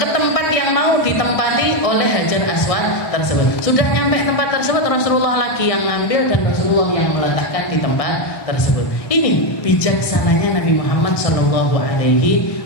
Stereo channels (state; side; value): late; right; 1.6 ms